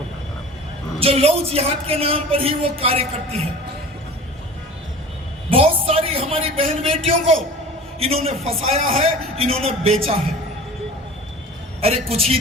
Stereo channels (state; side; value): normal; both; correlation 0.40